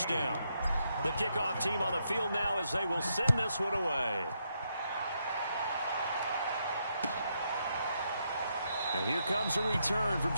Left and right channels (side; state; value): both; inverted; correlation -0.79